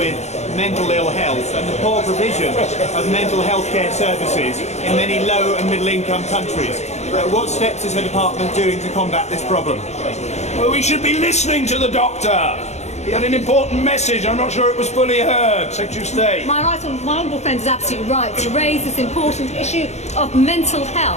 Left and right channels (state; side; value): late; right; 0.32 ms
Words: mental ill health and the poor provision of mental health care services in many low and middle income countries. What steps is the department doing to combat this problem? Well, we should be listening to the doctor. He had an important message. I'm not sure it was fully heard. Secretary of State. My honourable friend is absolutely right to raise this important issue of mental